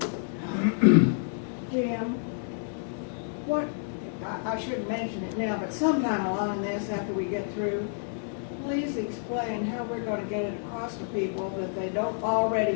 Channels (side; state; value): right; silent; digital silence